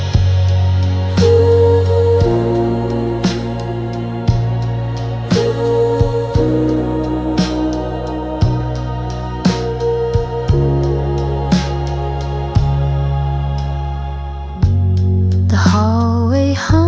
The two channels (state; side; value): identical; both; correlation 1.00